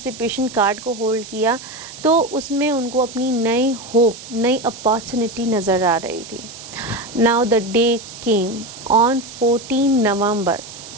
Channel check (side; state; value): right; noise; hiss, 14 dB below the sound